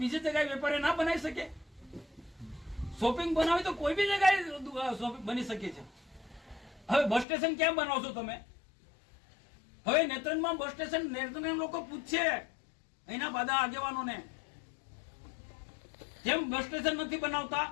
બીજી જગ્યાએ વેપારી ના બનાવી શકે? શોપિંગ બનાવી તો કોઈ બી જગ્યાએ શોપિંગ બની શકે છે. હવે બસ સ્ટેશન ક્યાં બનાવશો તમે? હવે નેત્રંગમાં બસ સ્ટેશન નેત્રંગ લોકો પૂછશે અહીંના બધા આગેવાનોને, કેમ બસ સ્ટેશન નથી બનાવતા?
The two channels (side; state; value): right; drops out; at 7.2 s